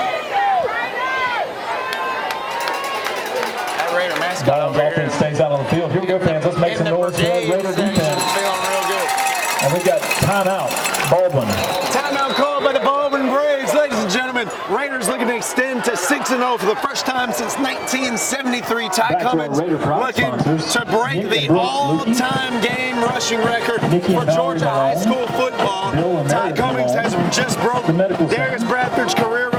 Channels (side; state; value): both; identical; correlation 1.00